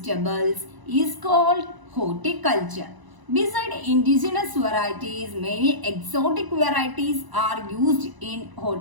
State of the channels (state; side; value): late; left; 1.0 ms